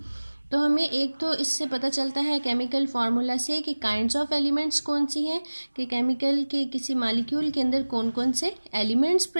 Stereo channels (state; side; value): inverted; both; correlation -1.00